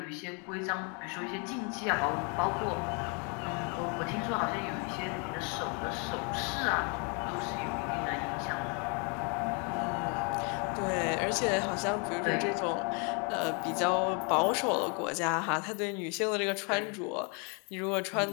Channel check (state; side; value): quieter; right; 35.7 dB